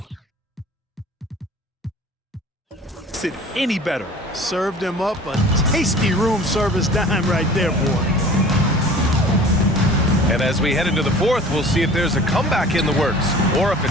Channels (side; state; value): both; normal; correlation 0.45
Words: it any better. Served him up a tasty room service dime right there, boy. And as we head into the fourth, we'll see if there's a comeback in the works or if